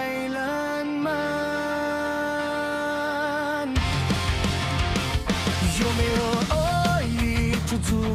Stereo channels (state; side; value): identical; both; correlation 1.00